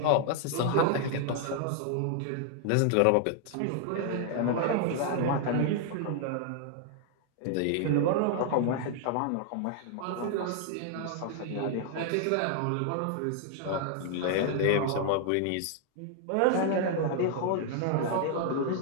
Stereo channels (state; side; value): different; both; correlation 0.00